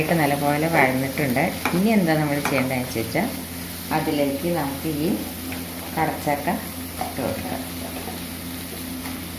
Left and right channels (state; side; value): identical; both; correlation 1.00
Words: നല്ലപോലെ വഴന്നിട്ടുണ്ട്. ഇനി എന്താ നമ്മൾ ചെയ്യേണ്ടതെന്ന് വെച്ചാൽ അതിലേക്ക് നമുക്ക് ഈ കടച്ചക്ക ഇട്ട് കൊടുക്കാം.